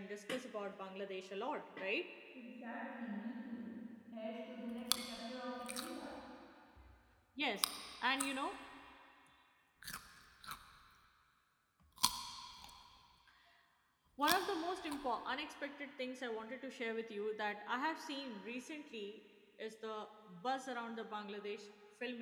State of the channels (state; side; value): identical; both; correlation 1.00